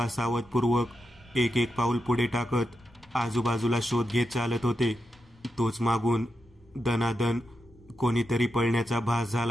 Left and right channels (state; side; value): normal; both; correlation 0.87